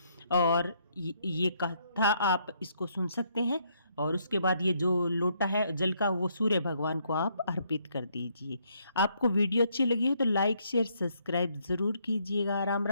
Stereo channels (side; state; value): both; inverted; correlation -0.71